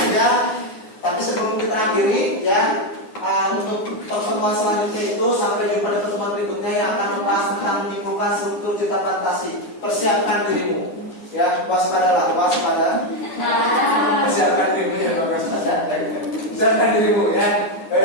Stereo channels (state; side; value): late; right; 9.8 ms